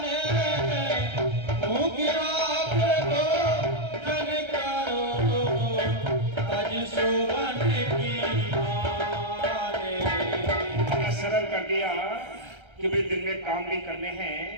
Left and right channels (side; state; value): left; late; 1.3 ms